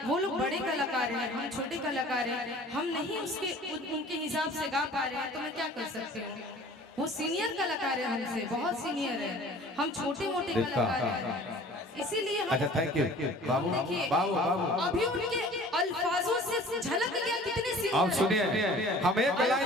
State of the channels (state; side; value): normal; both; correlation 0.47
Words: वो लोग बड़े कलाकार हैं, हम छोटे कलाकार हैं, हम नहीं उनके हिसाब से गा पा रहे हैं, तो मैं क्या कर सकती हूँ। वो सीनियर कलाकार है हमसे, बहुत सीनियर है, हम छोटे मोटे कलाकार हैं, इसीलिए हम। अच्छा, थैंक यू बाबू। देखिए, बाबू अभी उनके अल्फाजों से झलक गया कितने आप सीनियर। सुनिए, हम एक